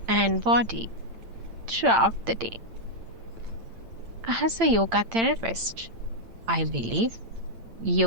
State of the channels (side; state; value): left; late; 8.8 ms